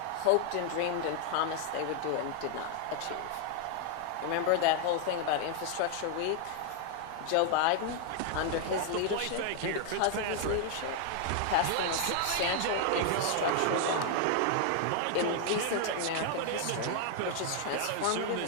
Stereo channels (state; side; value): different; both; correlation 0.00